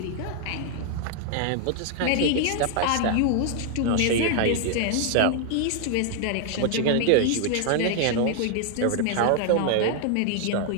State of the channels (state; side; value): different; both; correlation 0.00